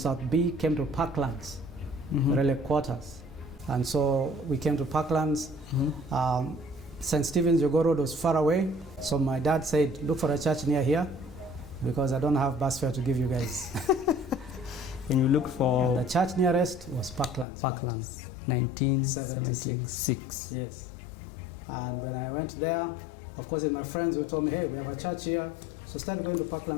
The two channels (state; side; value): drops out; right; at 17.4 s